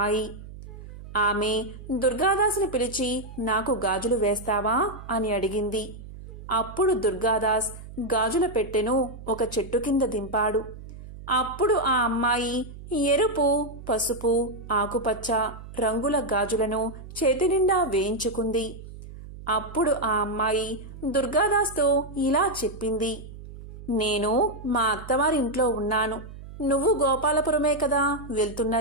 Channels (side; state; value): right; noise; hum, 14 dB below the sound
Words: ఆమె దుర్గాదాసుని పిలిచి నాకు గాజులు వేస్తావా అని అడిగింది. అప్పుడు దుర్గాదాస్ గాజుల పెట్టెను ఒక చెట్టు కింద దింపాడు. అప్పుడు ఆ అమ్మాయి ఎరుపు, పసుపు, ఆకుపచ్చ రంగుల గాజులను చేతి నిండా వేయించుకుంది. అప్పుడు ఆ అమ్మాయి దుర్గాదాస్తో ఇలా చెప్పింది, నేను మా అత్తవారింట్లో ఉన్నాను. నువ్వు గోపాలపురమే కదా